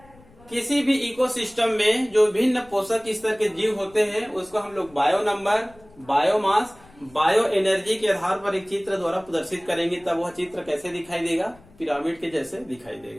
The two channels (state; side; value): noise; left; rumble, 26 dB below the sound